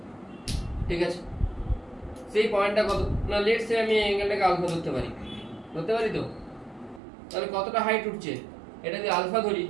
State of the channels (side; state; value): left; drops out; at 7.0 s